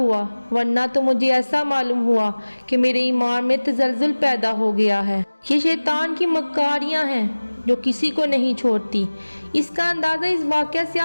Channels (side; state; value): both; inverted; correlation -1.00